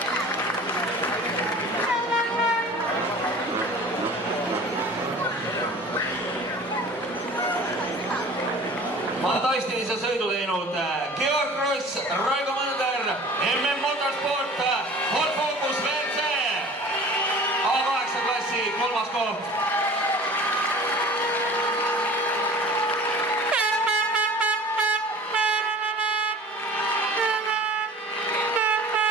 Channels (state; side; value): normal; both; correlation 0.43